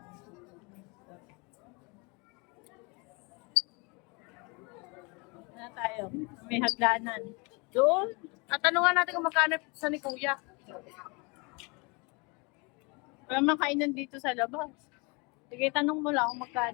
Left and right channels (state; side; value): quieter; right; 29.4 dB